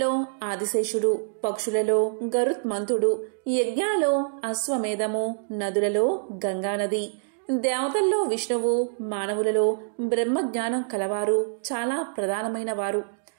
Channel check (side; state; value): left; silent; digital silence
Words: ఆదిశేషుడు, పక్షులలో గరుత్మంతుడు, యజ్ఞాలలో అశ్వమేధము, నదులలో గంగానది, దేవతల్లో విష్ణువు, మానవులలో బ్రహ్మజ్ఞానం కలవారు చాలా ప్రధానమైన వారు.